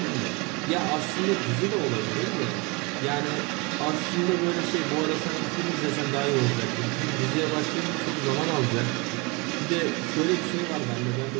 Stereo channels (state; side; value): quieter; left; 27.9 dB